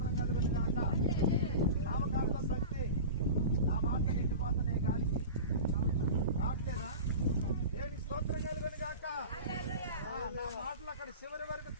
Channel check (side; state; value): both; inverted; correlation -0.31